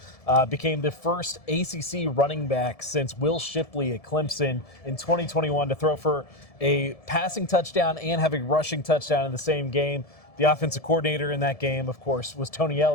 became the first ACC running back since Will Shipley at Clemson in 2021 to throw for a passing touchdown and have a rushing touchdown in the same game. The offensive coordinator in that game, of course, was Tony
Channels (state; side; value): late; right; 1.7 ms